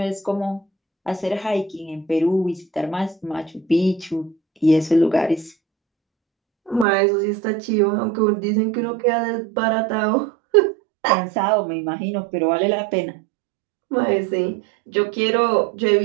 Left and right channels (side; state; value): left; drops out; at 6.9 s